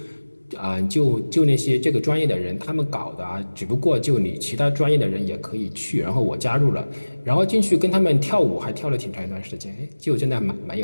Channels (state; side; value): inverted; both; correlation -1.00